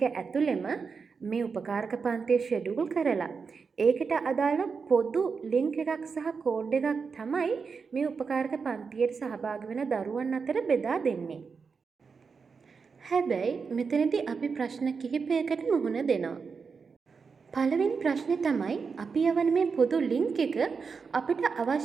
ඇතුළෙම මේ උපකාරක පන්තිය ෂෙඩියුල් කරලා ඒකට අදාළ පොදු ලින්ක් එකක් සහ කෝඩ් එකක් තමයි මේ උපකාරක පන්තියට සහභාගී වෙන දරුවන් අතර බෙදා දෙන්නේ. හැබැයි මෙතනදී අපි ප්‍රශ්න කිහිපයකට මුහුණ දෙනවා. පළවෙනි ප්‍රශ්නේ තමයි අපි යවන මේ පොදු ලින්ක් එක අපිට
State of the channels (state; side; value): quieter; left; 5.3 dB